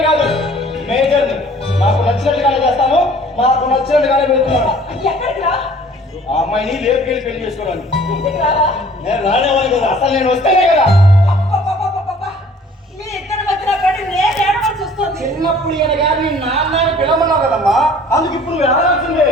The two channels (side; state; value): both; normal; correlation 0.52